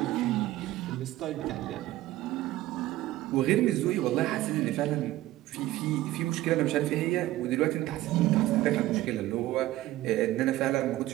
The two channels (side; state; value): left; quieter; 15.9 dB